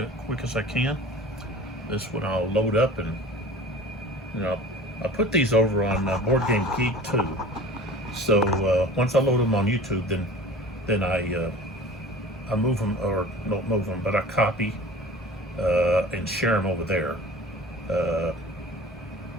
as I can. This one I'll load up, and I put these over on Board Game Geek too. So once I load them on YouTube, then I move them, or don't move them, but I copy and share them over there,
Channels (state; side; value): normal; both; correlation 0.41